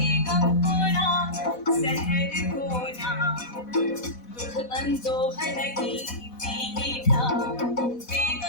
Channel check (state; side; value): late; right; 4.1 ms